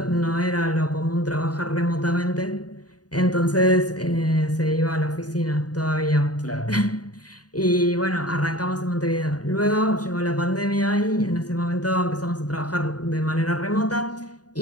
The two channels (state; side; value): late; right; 0.68 ms